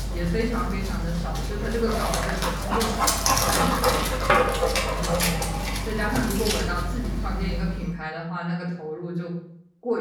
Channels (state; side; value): identical; both; correlation 1.00